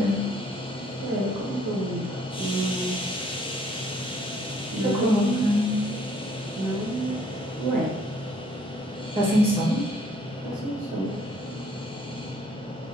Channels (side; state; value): both; normal; correlation 0.63